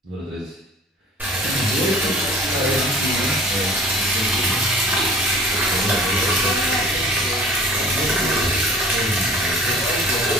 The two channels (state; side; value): normal; both; correlation 0.47